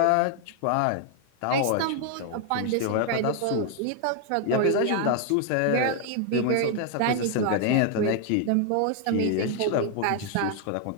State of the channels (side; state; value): both; different; correlation 0.00